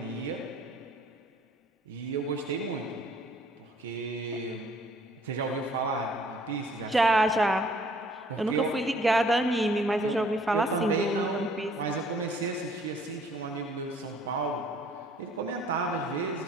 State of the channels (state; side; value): normal; both; correlation 0.59